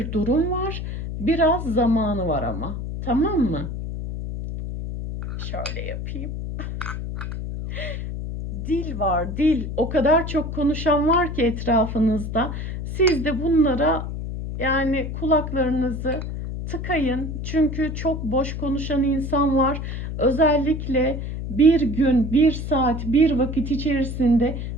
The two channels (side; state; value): left; noise; hum, 5 dB below the sound